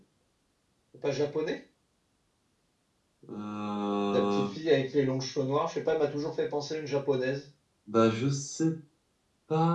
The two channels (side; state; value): both; identical; correlation 1.00